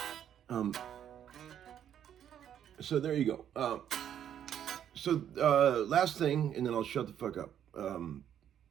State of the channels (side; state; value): left; quieter; 9.8 dB